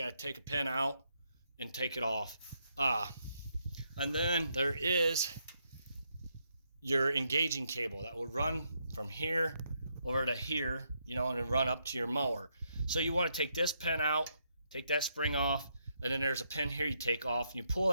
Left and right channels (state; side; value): inverted; both; correlation -0.77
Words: to take a pin out and take it off. And then there is your engaging cable that will run from here over to here, and run up to your mower. So you want to take this pin out, take that spring off, and then there's a pin here you take off, and you pull